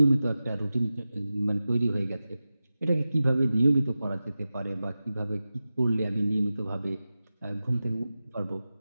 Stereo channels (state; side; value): inverted; both; correlation -0.95